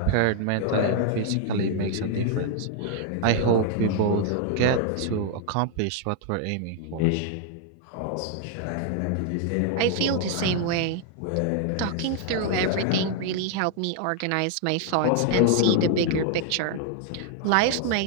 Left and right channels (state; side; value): different; both; correlation 0.00